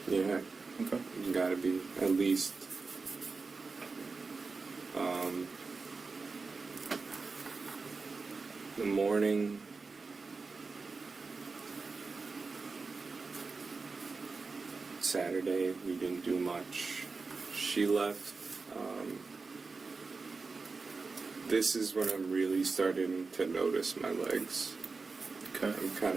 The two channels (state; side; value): quieter; left; 4.2 dB